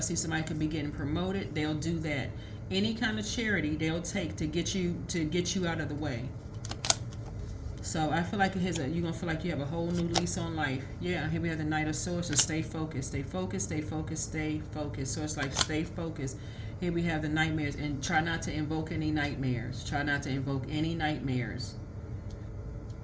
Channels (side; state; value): both; identical; correlation 1.00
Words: somebody could be getting promoted, they'll do that. Any kind of charity they'll take to get you out of the way. So I feel like you're gonna feel like you have a whole new lease on life. Yeah, here we have the Knight of Swords. So stay focused, stay focused, stay focused, stay focused. So it's like stay focused. Here we have the nightmares, and try not to invoke any nightmares. Try not to invoke any nightmares.